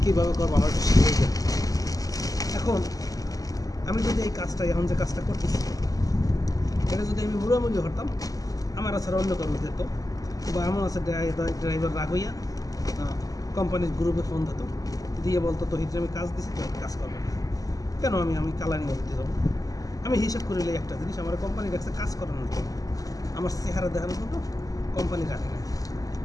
কীভাবে করবো আমার একটু শিখে যায়। এখন আমি যদি এই কাজটা এখন যে কাজটা করতেছি এটা যদি আমি মুড়ামুড়ি হতাম আমার ছাড়া অন্য কারণ দিত, বা এমন আছে ড্রাইভার রাগ হইয়া কোম্পানির গ্রুপে ফোন দিত, দিয়ে বলতো তহিদ আমি কাজ দিছি তো কাজ করবো না, কেন আমি কালানি করতে যাবো। আমি হিসাব করিলে একটা জিনিস আমার কোম্পানির কাছে কাজ করানোর জন্য, আমার চেহারা দেখানোর জন্য কোম্পানি রাখে না।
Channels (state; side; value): late; right; 0.17 ms